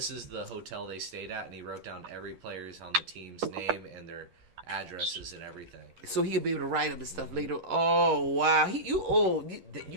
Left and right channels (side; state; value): left; late; 10 ms